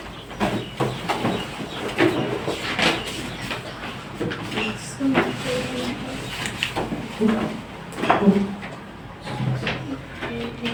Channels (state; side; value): identical; both; correlation 1.00